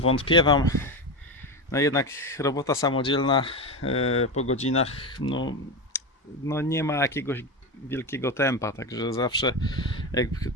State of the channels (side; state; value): both; normal; correlation 0.17